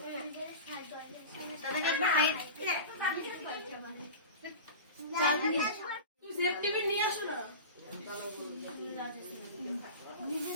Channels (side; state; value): both; inverted; correlation -0.30